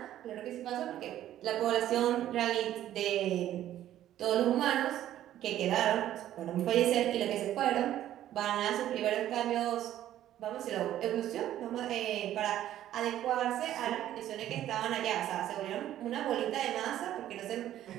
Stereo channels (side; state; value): left; quieter; 12.4 dB